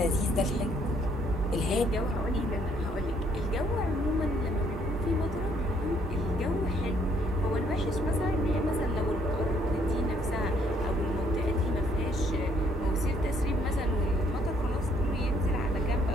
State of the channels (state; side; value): normal; both; correlation 0.67